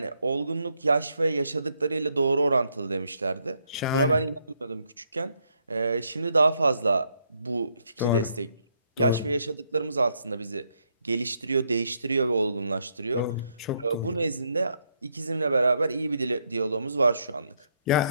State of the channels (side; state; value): both; inverted; correlation -0.74